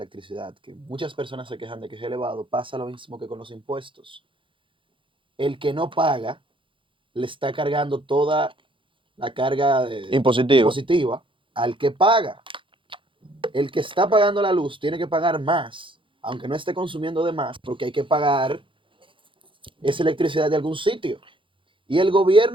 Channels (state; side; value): late; left; 0.25 ms